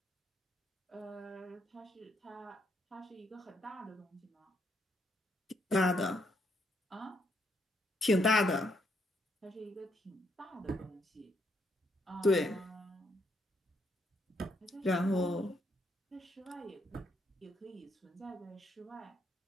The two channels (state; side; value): normal; both; correlation 0.75